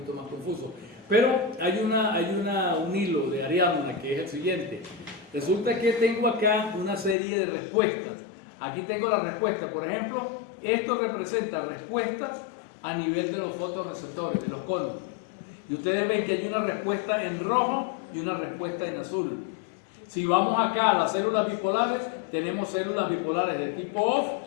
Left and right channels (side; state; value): right; drops out; at 7.2 s